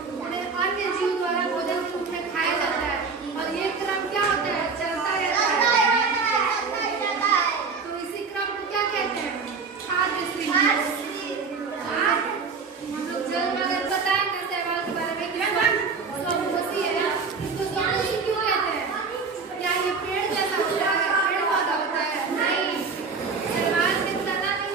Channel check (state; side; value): quieter; left; 5.0 dB